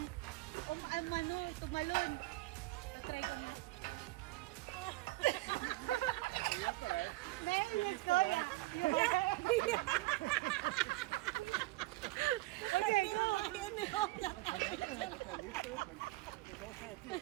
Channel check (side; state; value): left; quieter; 20.4 dB